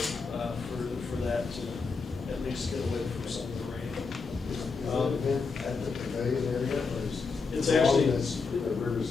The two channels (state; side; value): quieter; right; 4.7 dB